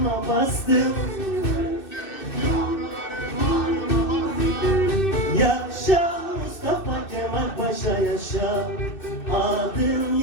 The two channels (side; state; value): right; late; 2.6 ms